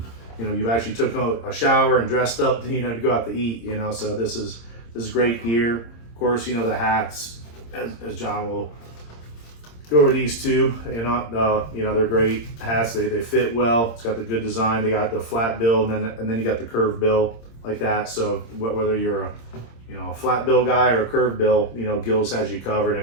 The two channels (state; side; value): late; right; 26 ms